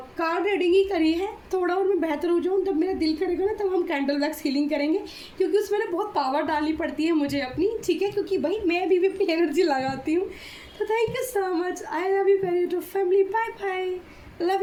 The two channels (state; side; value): identical; both; correlation 1.00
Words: कार्ड रीडिंग ही करी है। थोड़ा और मैं बेहतर हो जाऊँ, जब मेरा दिल करेगा ना तब हम कैंडल वैक्स हीलिंग करेंगे, क्योंकि उसमें ना बहुत पावर डालनी पड़ती है मुझे अपनी। ठीक है, क्योंकि भाई मैं भी अपनी एनर्जी लगाती हूँ। तो thank you so much, I love you very to family, bye bye,